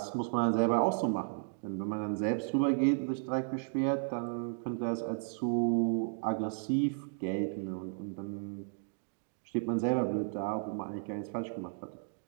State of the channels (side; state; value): left; silent; digital silence